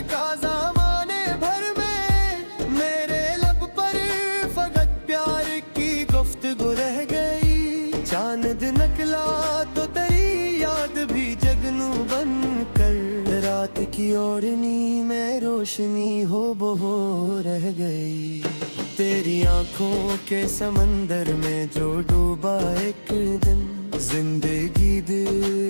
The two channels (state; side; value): inverted; both; correlation -1.00